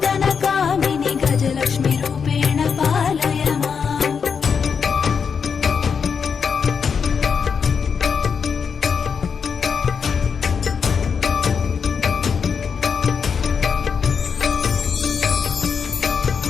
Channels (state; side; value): quieter; right; 6.3 dB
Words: कामिनि गजलक्ष्मी रूपेण पालय माम्